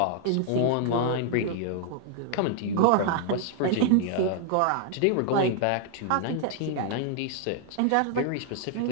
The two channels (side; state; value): both; different; correlation 0.00